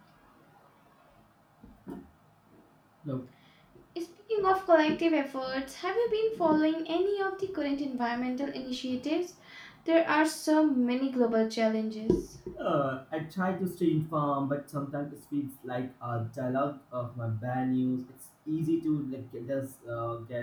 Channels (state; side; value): identical; both; correlation 1.00